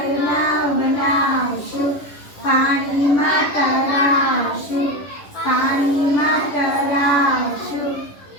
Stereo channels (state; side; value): late; right; 11 ms